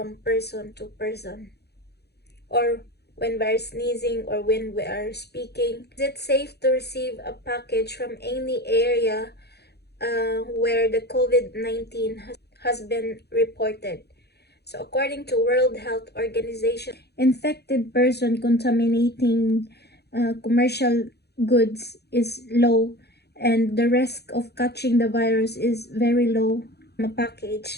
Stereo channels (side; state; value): right; late; 0.48 ms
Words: person to person, or when we are sneezing, or when we are speaking. Is it safe to receive a package from any area where the COVID-19 has been reported? So according to World Health Organization, infected person contaminating commercial goods is low, and the risk of catching the virus is very low. A